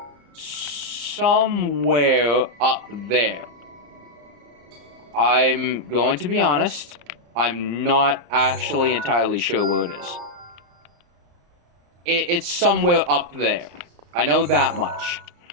somewhere up there. I'm going to be honest, I'm not actually entirely sure where it is. It's somewhere up there. I know that much.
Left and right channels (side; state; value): left; late; 34 ms